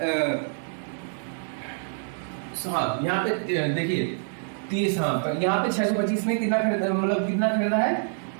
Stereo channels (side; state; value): left; silent; 59 dB below the other